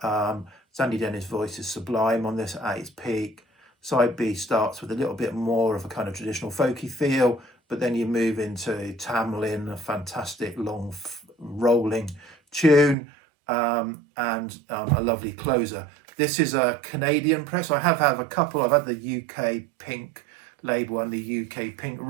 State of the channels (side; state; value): left; drops out; at 13.0 s